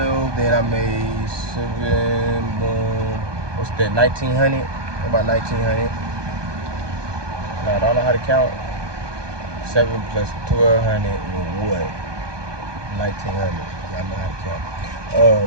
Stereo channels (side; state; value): left; late; 1.2 ms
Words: Then I made 7. Boom. What's that? 1,900. About 1900. Now I don't know how to count. 7 plus 1200 is what? 1900. Yeah, I know how to count.